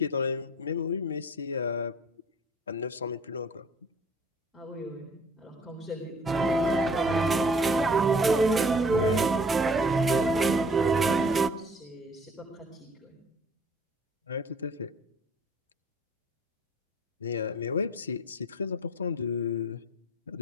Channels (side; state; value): both; normal; correlation 0.55